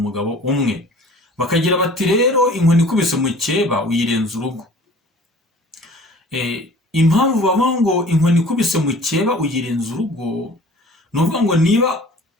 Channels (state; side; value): normal; both; correlation 0.47